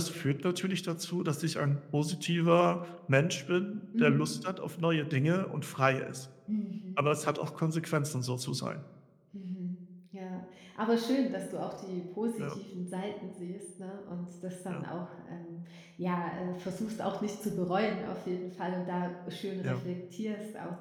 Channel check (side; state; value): both; identical; correlation 1.00